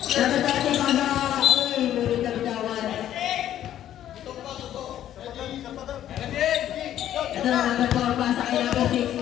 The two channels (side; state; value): right; quieter; 11.6 dB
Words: Number 30 pasa. Uy, murid na bitawan. Ito na number 4, pasa kay number 6,